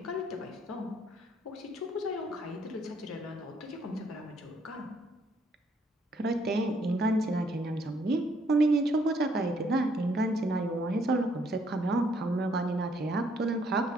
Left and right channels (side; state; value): both; normal; correlation 0.68